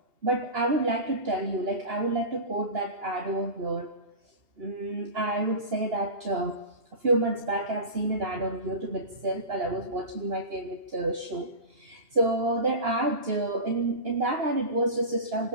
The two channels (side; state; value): left; late; 2.9 ms